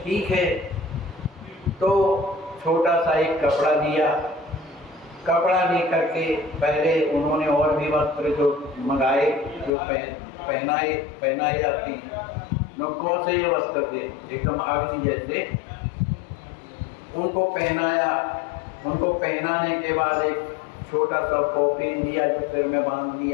ठीक है। तो छोटा सा एक कपड़ा दिया, कपड़ा लेकर के पहले उन्होंने और भी वस्त्र जो मंगाए, जो पहनाए जाती हैं, कौन से ये वस्त्र थे एकदम अग्नि जैसे, उनको पहनाया। उनको पहनाने के बाद एक छोटा सा कॉफिन दिया जो सिर में बांध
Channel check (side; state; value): right; drops out; at 9.7 s